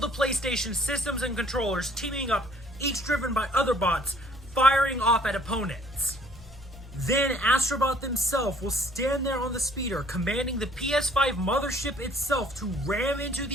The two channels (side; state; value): both; normal; correlation 0.58